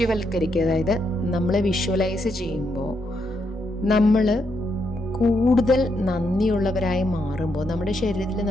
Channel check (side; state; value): both; normal; correlation 0.79